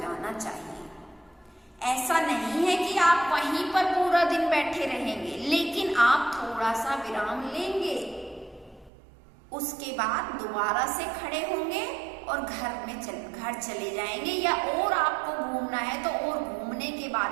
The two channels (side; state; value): left; drops out; at 8.9 s